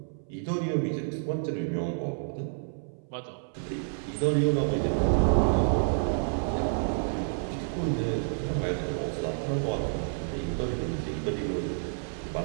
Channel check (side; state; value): left; silent; 58 dB below the other